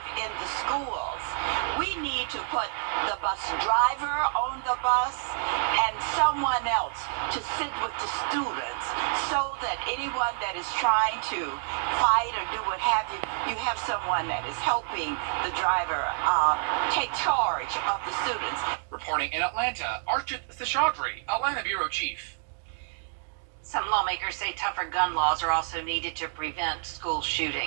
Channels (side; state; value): left; silent; 59 dB below the other